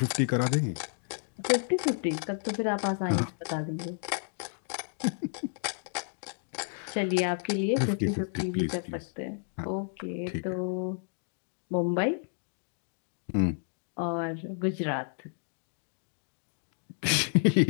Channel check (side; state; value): right; silent; digital silence